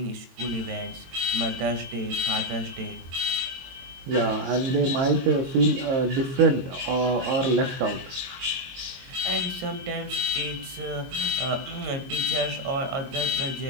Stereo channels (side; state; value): left; late; 22 ms